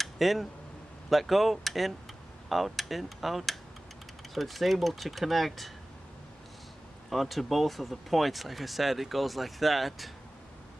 in, let go, in, out, in, out. So it's able to connect onto both of the points. Like I said, it goes like that,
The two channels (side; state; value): both; normal; correlation 0.97